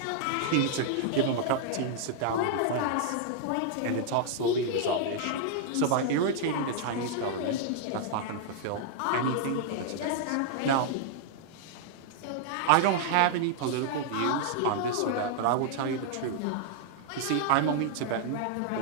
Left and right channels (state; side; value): different; both; correlation -0.01